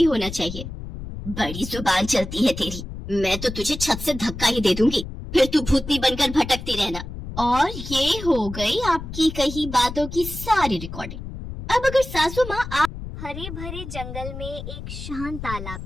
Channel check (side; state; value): left; noise; rumble, 9 dB below the sound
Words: होना चाहिए। बड़ी जुबान चलती है तेरी, मैं तो तुझे छत से धक्का ही दे दूंगी, फिर तू भूतनी बनकर भटकती रहना। और ये हो गई आपकी कही बातों की सारी रिकॉर्डिंग। अब अगर सासू माँ हरे भरे जंगल में एक शांत तालाब